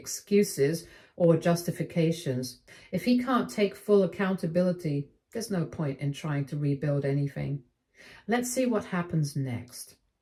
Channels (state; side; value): identical; both; correlation 1.00